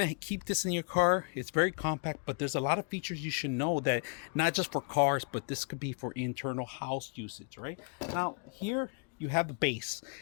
keep this in your car, it's very compact, but there's a lot of features you should know that not just for cars, but this could be for internal house usage, right? Now, here you have the base,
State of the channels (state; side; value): quieter; right; 39.8 dB